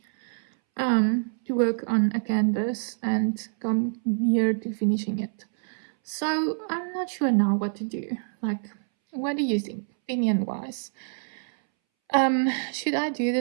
to work on a canvas and come near to finishing it. So I'm not sure now what to do. Like, what do you think, opinion wise? Should I do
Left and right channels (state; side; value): silent; left; 61 dB below the other